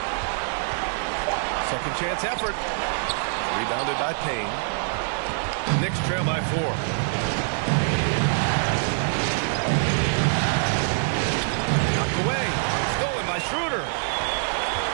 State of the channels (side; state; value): left; silent; 62 dB below the other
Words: Second chance effort. Rebounded by Payne. Knicks trail by 4. Knocked away. Stolen by Schroeder.